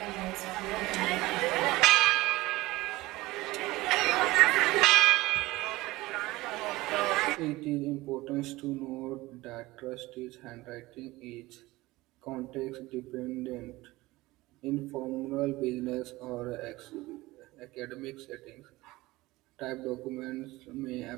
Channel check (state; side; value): quieter; left; 19.6 dB